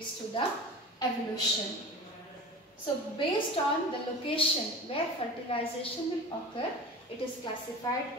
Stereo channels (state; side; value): normal; both; correlation 0.35